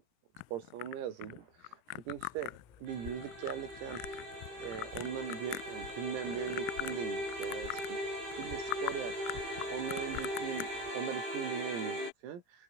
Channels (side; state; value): left; late; 17 ms